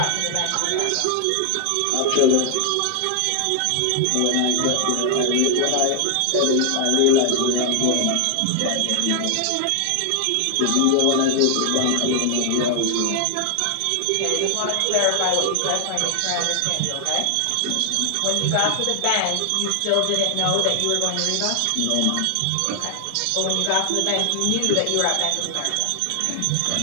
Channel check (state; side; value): different; both; correlation 0.00